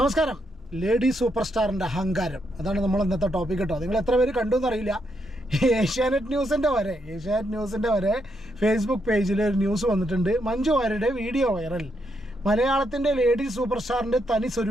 ലേഡി സൂപ്പർ സ്റ്റാറിൻ്റെ അഹങ്കാരം, അതാണ് നമ്മൾ ഇന്നത്തെ ടോപ്പിക് കേട്ടോ. നിങ്ങൾ എത്ര പേര് കണ്ടു എന്നറിയില്ല. ഏഷ്യാനെറ്റ് ന്യൂസിൻ്റെ വരെ ഫേസ്ബുക്ക് പേജിൽ ഒരു ന്യൂസ് വന്നിട്ടുണ്ട്. മഞ്ജു വാര്യരുടെ വീഡിയോ വൈറൽ. മലയാളത്തിൻ്റെ ലേഡി സൂപ്പർ സ്റ്റാറിൻ്റെ തനി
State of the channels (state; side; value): normal; both; correlation 0.79